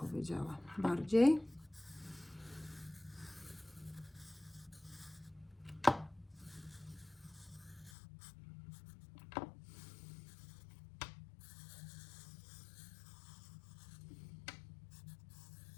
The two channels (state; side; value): drops out; right; at 7.9 s